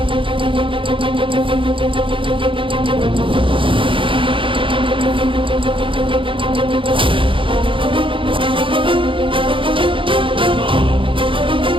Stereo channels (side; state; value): left; late; 0.25 ms